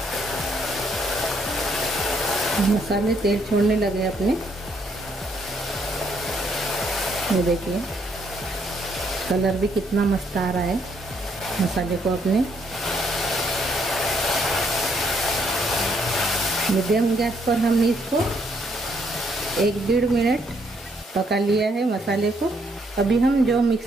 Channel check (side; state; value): both; normal; correlation 0.71